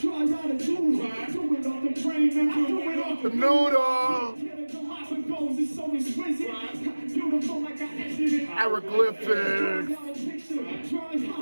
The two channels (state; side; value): inverted; both; correlation -1.00